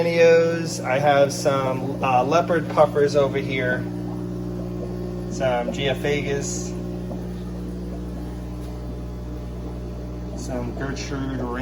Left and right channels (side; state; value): both; identical; correlation 1.00